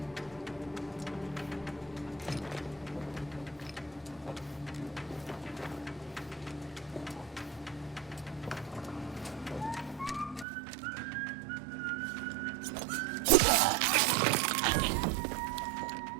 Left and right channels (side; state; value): left; drops out; at 10.5 s